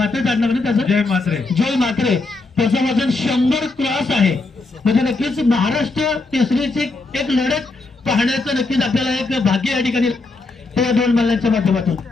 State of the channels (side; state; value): right; quieter; 3.4 dB